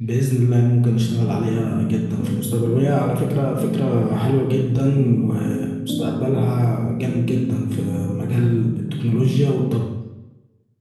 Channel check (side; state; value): both; identical; correlation 1.00